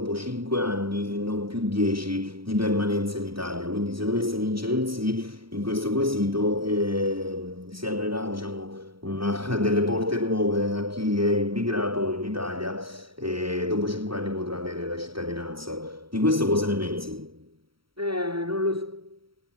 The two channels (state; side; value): late; left; 0.75 ms